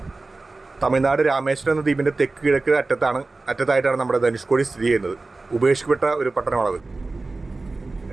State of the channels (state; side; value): quieter; left; 3.4 dB